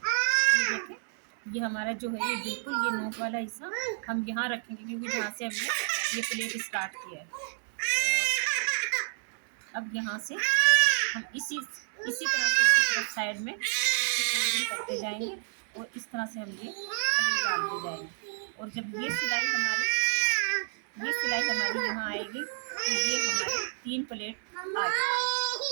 ये देखें ये हमारा जो है ये बिल्कुल ये नोक वाला हिस्सा हम यहाँ रखेंगे, क्योंकि जहाँ से हमने ये प्लेट स्टार्ट किया है। और अब यहाँ से हम इसी तरह से इसकी तरफ साइड में फोल्डिंग करते जाएंगे, और इस तरह से हम ये प्लेट डालते जाएंगे। और जब ये सिलाई हमारी यहाँ आएगी तो ये हमारी 3 प्लेट आ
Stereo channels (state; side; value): silent; left; digital silence